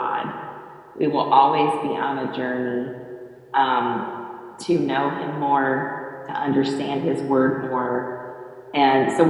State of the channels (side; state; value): both; identical; correlation 1.00